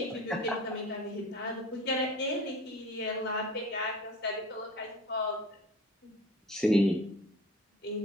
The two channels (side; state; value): both; normal; correlation 0.41